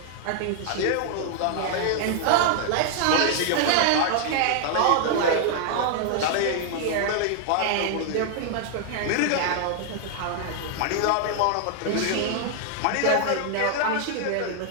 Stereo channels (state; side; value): different; both; correlation 0.00